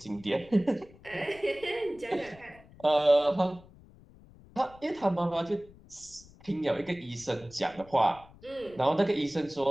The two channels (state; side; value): noise; left; rumble, 23 dB below the sound